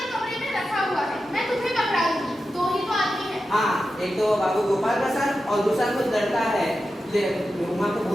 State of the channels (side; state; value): both; normal; correlation 0.91